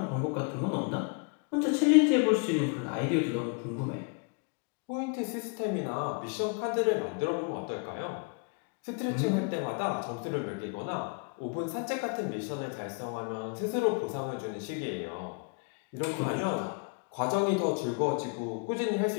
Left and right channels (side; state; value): right; quieter; 35.8 dB